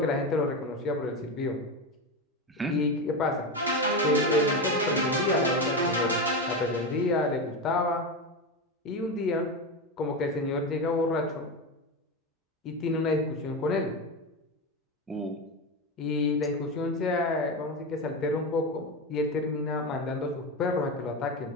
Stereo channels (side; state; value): both; normal; correlation 0.17